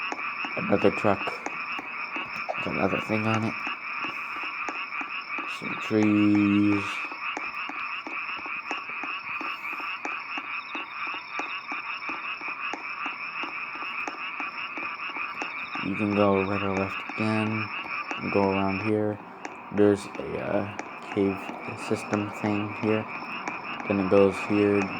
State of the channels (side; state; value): both; identical; correlation 1.00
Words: Another truck with another thing on it. Some trees. You can go right or left again, and go around here. There's a cave system thing here. Then it goes here,